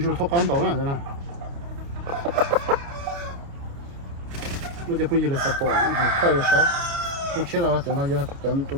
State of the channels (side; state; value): left; late; 29 ms